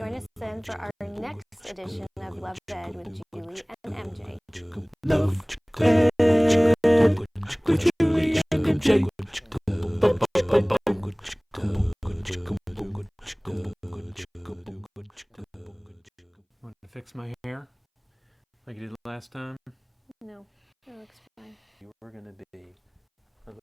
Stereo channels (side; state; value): both; identical; correlation 1.00